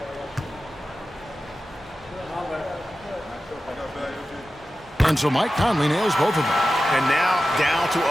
And so Mike Conley nails both of them. And now down to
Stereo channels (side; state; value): both; normal; correlation 0.93